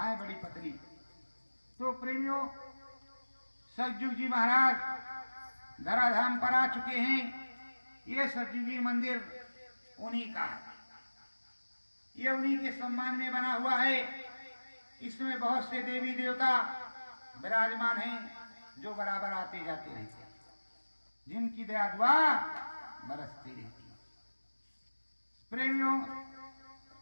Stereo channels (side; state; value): both; inverted; correlation -1.00